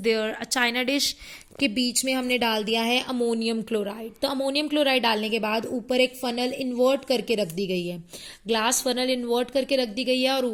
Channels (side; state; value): both; identical; correlation 1.00